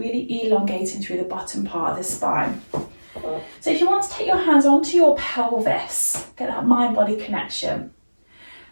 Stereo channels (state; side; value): inverted; both; correlation -1.00